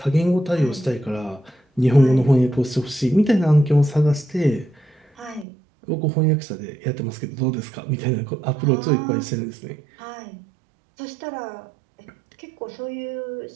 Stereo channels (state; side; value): drops out; left; at 5.5 s